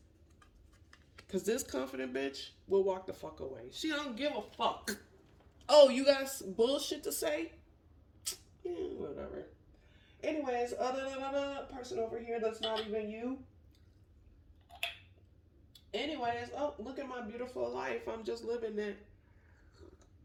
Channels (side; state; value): both; identical; correlation 1.00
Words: Because this confident bitch will walk the fuck away. She don't give a fuck. Oh, you got bullshit to say? Yeah, whatever. Anyways, person over here that's not even you. Anyways, oh, look at my beautiful life. I'm just living it.